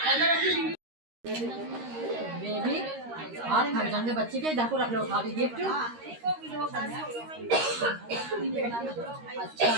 बेबी हाथ थक जाएंगे बच्चे के देखो रख लो उठा दी गिफ्ट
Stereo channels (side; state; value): left; late; 13 ms